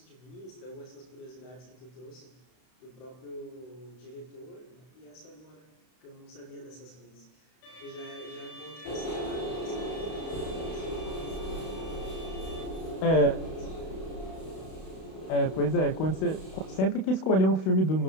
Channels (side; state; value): right; late; 32 ms